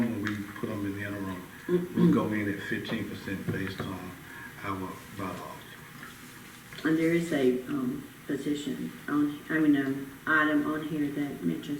we put them in the interim, we'll go in at 15% based on our bylaws. And there is a position on, item on here that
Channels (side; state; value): both; identical; correlation 1.00